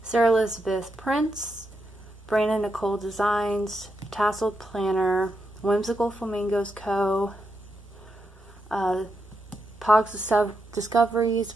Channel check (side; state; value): both; normal; correlation 0.84